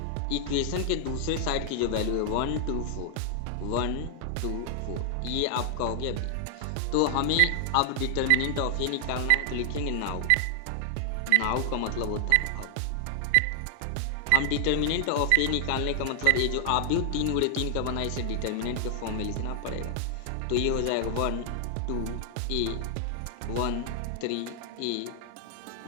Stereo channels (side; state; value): both; different; correlation 0.00